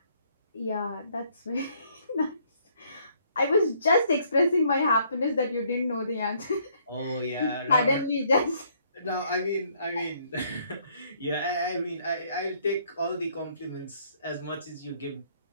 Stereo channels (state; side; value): inverted; both; correlation -0.66